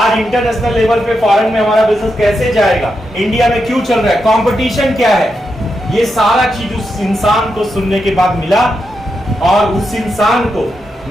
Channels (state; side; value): normal; both; correlation 0.85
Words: इंटरनेशनल लेवल पे फॉरेन में हमारा बिजनेस कैसे जाएगा, इंडिया में क्यों चल रहा है, कंपटीशन क्या है, ये सारा चीज उस इंसान को सुनने के बाद मिला। और उस इंसान को